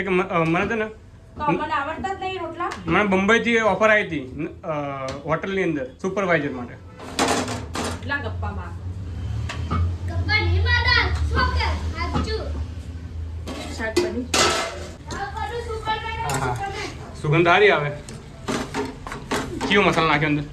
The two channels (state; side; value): identical; both; correlation 1.00